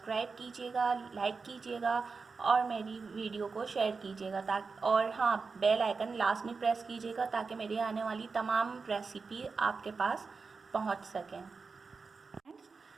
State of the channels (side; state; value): left; quieter; 4.6 dB